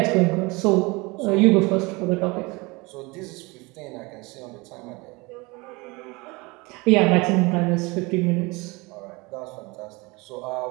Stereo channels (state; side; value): quieter; left; 25.4 dB